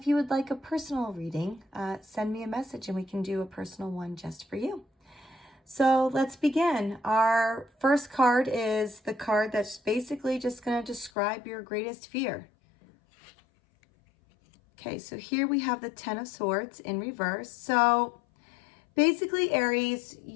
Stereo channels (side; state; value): right; drops out; at 11.1 s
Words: you would like a personal reading, send me a message and we can do a personal one just for you. So let's begin. Our first card is the card that's basically just going to describe your greatest fear. Okay, so here we have the Ten of Swords in reverse. So basically, Aries,